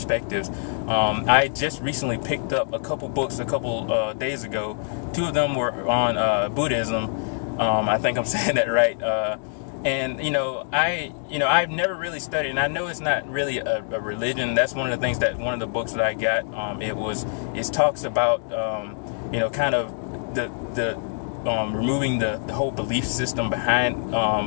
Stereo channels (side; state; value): right; silent; digital silence